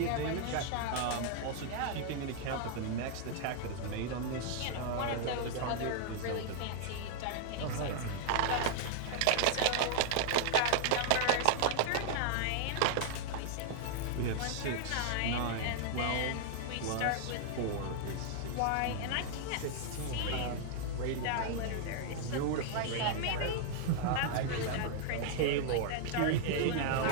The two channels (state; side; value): different; both; correlation -0.01